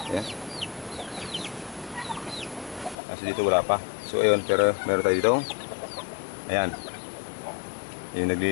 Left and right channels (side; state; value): right; drops out; at 3.0 s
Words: Ayan. Kasi dito wala pa. So, ayun, pero meron tayo dito. Ayan. Yung